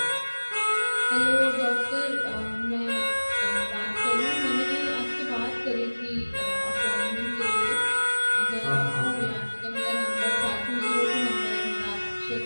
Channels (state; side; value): inverted; both; correlation -1.00